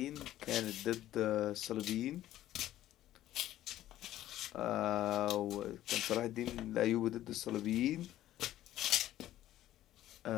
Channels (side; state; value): right; quieter; 13.5 dB